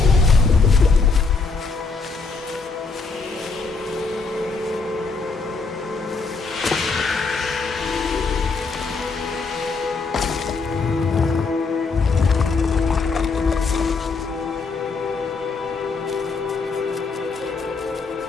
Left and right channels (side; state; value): right; quieter; 4.4 dB